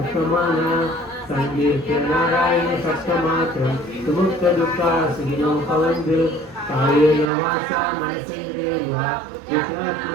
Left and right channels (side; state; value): left; drops out; at 7.2 s